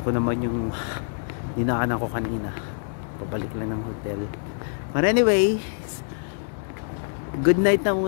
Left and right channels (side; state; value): right; silent; digital silence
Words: ko naman yung dinaanan ko kanina. Pabalik lang ng hotel. But anyway, good night na